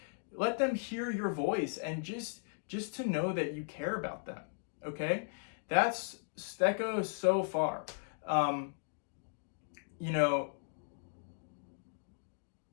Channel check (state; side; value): silent; right; digital silence